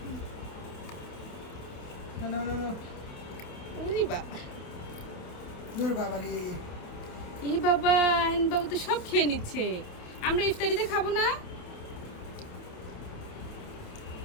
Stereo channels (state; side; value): late; right; 28 ms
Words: না ওরে বাবা ওরে বাবারে ই বাবা আয়ন বাবু তো সব খেয়ে নিচ্ছে। আমরা ইফতারিতে খাবো না?